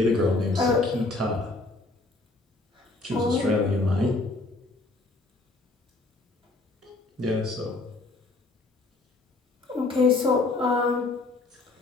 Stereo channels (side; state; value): right; quieter; 3.3 dB